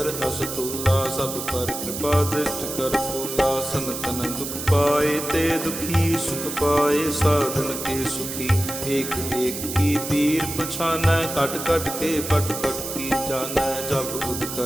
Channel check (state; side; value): noise; right; hiss, 6 dB below the sound